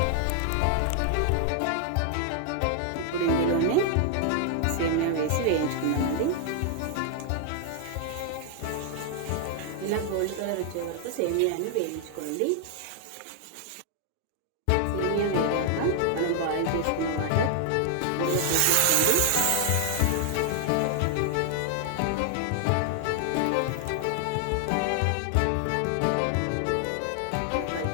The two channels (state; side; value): different; both; correlation 0.00